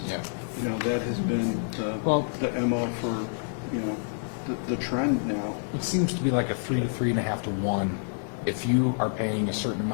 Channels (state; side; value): silent; right; digital silence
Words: Yeah. You know, that has been Well- the MO for, you know, the trend now. It seems to be like a 3 to 3.5 to 1. If you are paying a certain